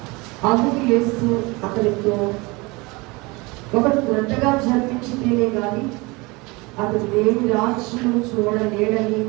అందుకు యేసు అతనితో, ఒకడు క్రొత్తగా జన్మించితేనే గాని అతడు దేవుని రాజ్యం చూడలేడని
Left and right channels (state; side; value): quieter; left; 24.9 dB